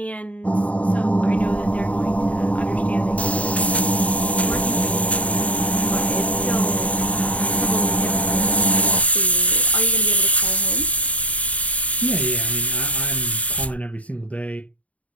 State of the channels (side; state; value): right; late; 0.067 ms